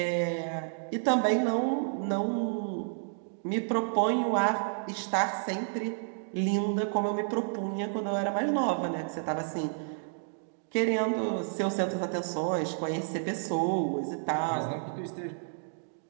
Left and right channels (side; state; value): left; silent; digital silence